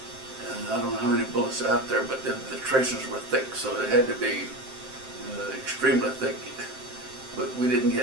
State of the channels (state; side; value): late; left; 7.7 ms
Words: And I don't know how many bullets are out there, but the tracers were thick, so it had to be extremely thick. But we didn't